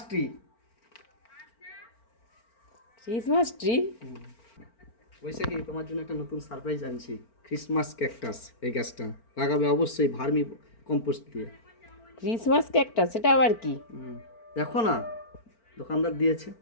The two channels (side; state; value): right; late; 4.4 ms